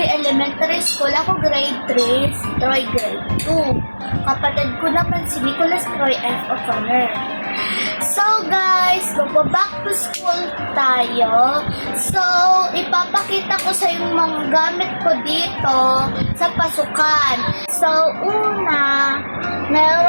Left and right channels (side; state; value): both; inverted; correlation -1.00